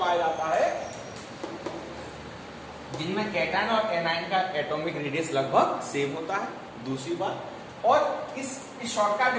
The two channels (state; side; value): identical; both; correlation 1.00